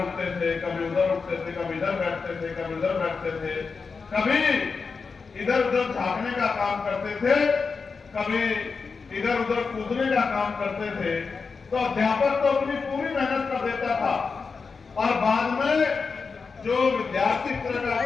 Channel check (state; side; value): quieter; right; 4.9 dB